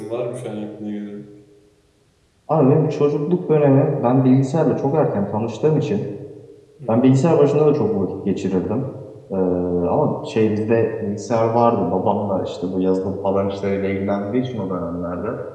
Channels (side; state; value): both; identical; correlation 1.00